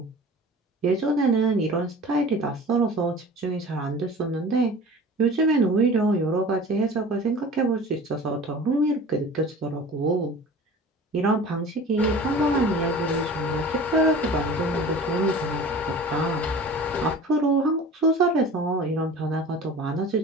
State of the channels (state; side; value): normal; both; correlation 0.40